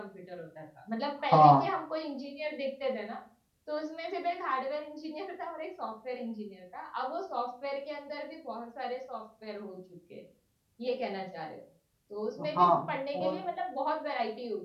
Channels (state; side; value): identical; both; correlation 1.00